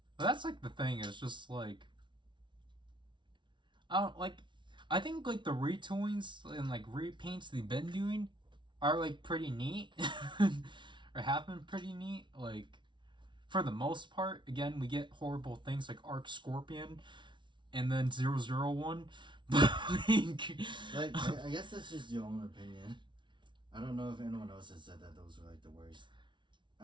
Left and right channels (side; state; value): left; late; 0.24 ms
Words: But that's like the thing. It's just like, I think like the retoolings and like repaints they've been doing are like pretty neat, or have been pretty neat. Like for the most part, again, we get horrible things like Arc Scorpion, and then 001. But like I guess that's just your own opinion. I don't know if anyone else has said that those were like the worst.